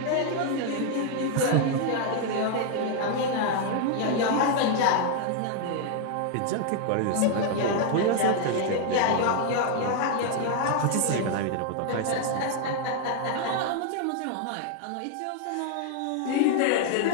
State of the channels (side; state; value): both; different; correlation 0.00